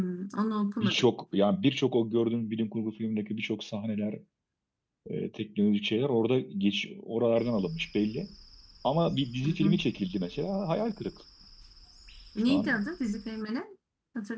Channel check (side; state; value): both; identical; correlation 1.00